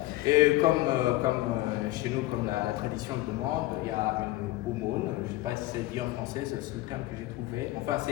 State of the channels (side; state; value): right; quieter; 17.8 dB